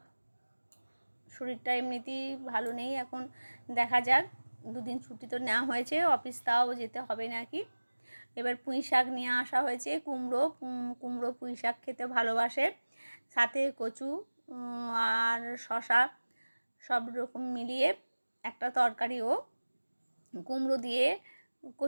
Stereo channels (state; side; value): inverted; both; correlation -1.00